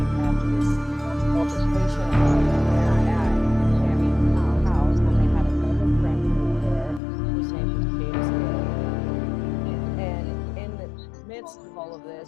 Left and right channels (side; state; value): right; drops out; at 7.0 s